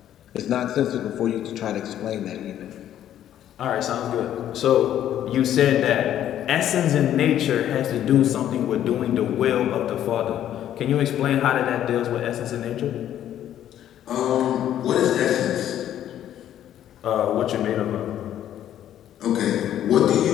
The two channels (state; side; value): quieter; right; 11.3 dB